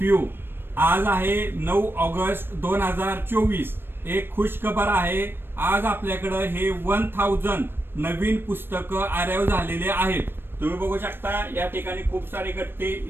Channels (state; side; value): late; left; 0.10 ms